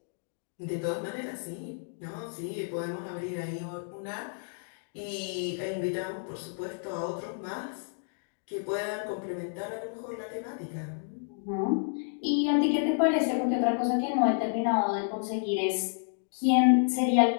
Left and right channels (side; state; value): right; silent; digital silence